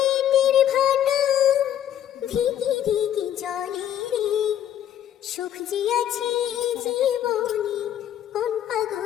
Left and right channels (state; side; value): quieter; right; 10.7 dB